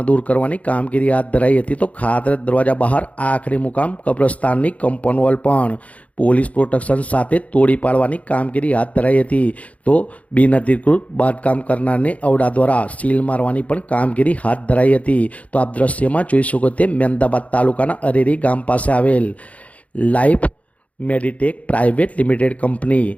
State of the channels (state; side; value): late; right; 0.067 ms